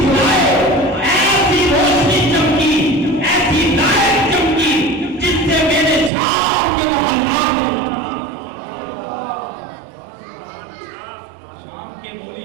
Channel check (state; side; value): drops out; left; at 6.1 s